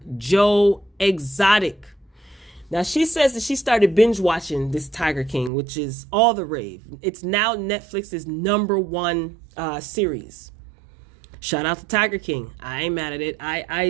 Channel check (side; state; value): left; drops out; at 5.5 s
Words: Joe Exotic. Now, she says that she started binge watching this Tiger King, which is all the rave. It's now Netflix's #1 series. Shout out to Tiger King. I ain't mad at it.